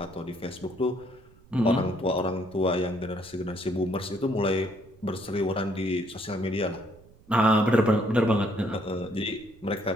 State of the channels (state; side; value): noise; right; rumble, 25 dB below the sound